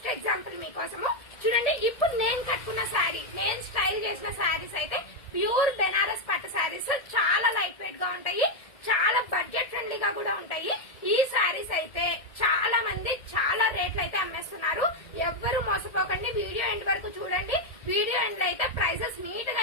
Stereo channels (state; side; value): late; right; 1.7 ms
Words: ఎగ్జాంపుల్ మీకోసము. చూడండి, ఇప్పుడు నేను కట్టుకున్న శారీ, నేను స్టైల్ చేసిన శారీస్ అయితే ప్యూర్ బెనారస్ పట్టు శారీస్. చాలా లైట్ వెయిట్ గా ఉంటాయి, చాలా బడ్జెట్ ఫ్రెండ్లీగా కూడా ఉంటాయి. ఈ శారీస్ అయితే చాలా మంది చాలా రేట్లు అయితే అమ్మేస్తున్నారు. ఎవ్వరు మోసపోకండి, వీడియో ఎండ్ వరకు చూడండి. వీడియో ఎండ్ లో అయితే ప్రైజెస్ నీట్ గా